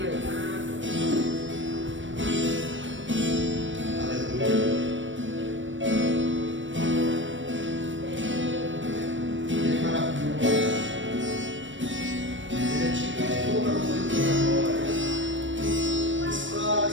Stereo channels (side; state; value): left; late; 0.56 ms